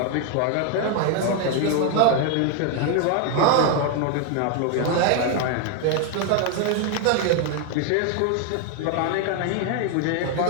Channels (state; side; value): different; both; correlation 0.00